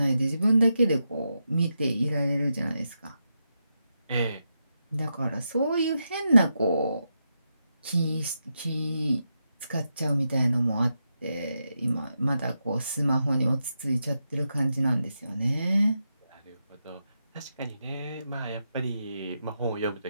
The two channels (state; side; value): inverted; both; correlation -0.86